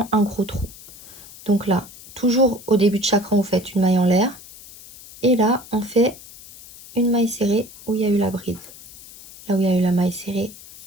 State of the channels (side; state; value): left; noise; hiss, 19 dB below the sound